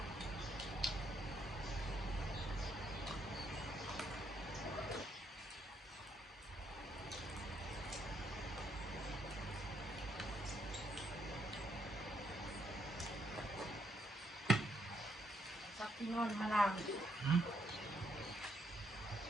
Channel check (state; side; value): normal; both; correlation 0.75